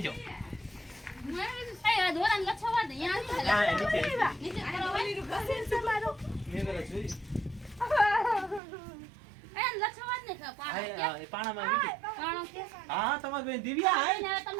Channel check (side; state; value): left; drops out; at 8.6 s